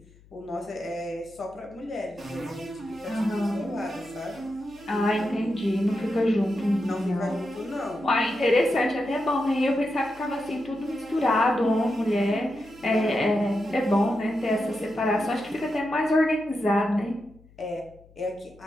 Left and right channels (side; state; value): left; noise; hum, 26 dB below the sound